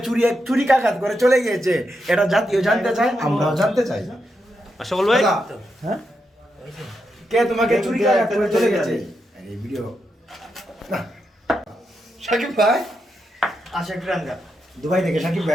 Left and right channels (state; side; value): normal; both; correlation 0.84